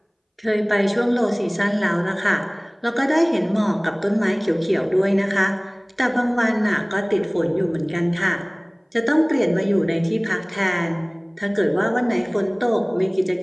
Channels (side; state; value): both; identical; correlation 1.00